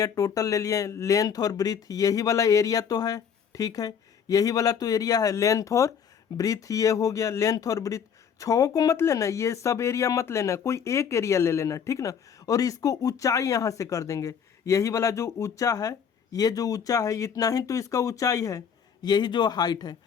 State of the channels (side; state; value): right; quieter; 7.4 dB